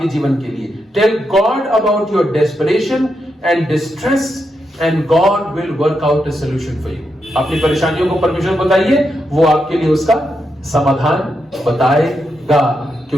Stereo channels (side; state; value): both; normal; correlation 0.84